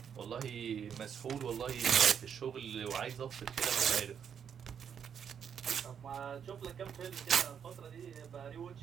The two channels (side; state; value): left; quieter; 7.8 dB